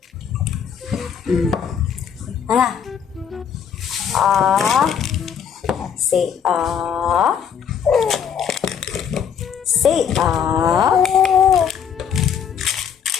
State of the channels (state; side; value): quieter; right; 7.8 dB